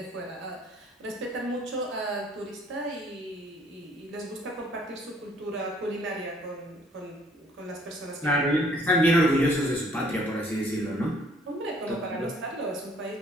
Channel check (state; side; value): normal; both; correlation 0.60